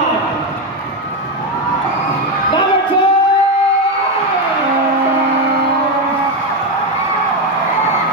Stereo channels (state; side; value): normal; both; correlation 0.10